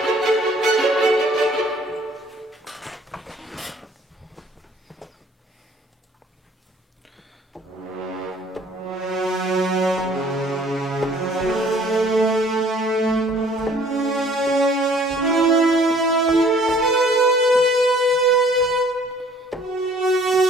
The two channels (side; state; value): both; normal; correlation 0.56